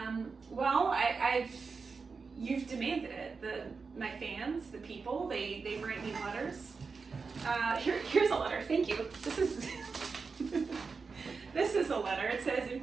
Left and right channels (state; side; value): quieter; left; 4.8 dB